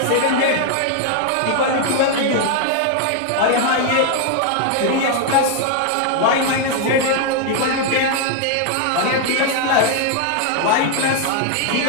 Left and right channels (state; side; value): different; both; correlation 0.00